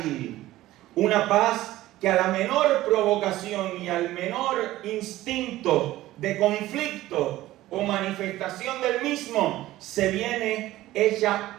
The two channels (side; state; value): left; quieter; 15.9 dB